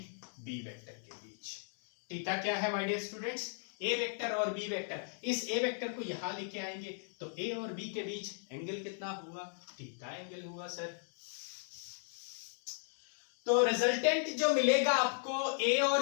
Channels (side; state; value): right; silent; digital silence